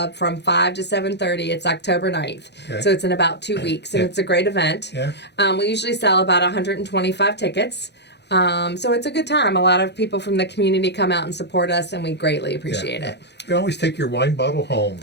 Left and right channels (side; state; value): right; late; 0.50 ms